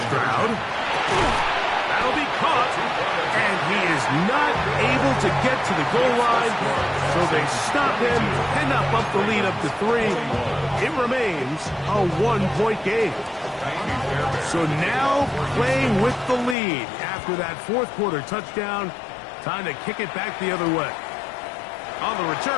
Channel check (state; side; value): drops out; right; at 16.6 s